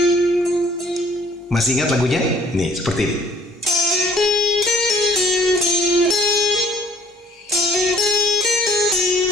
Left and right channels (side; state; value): both; normal; correlation 0.58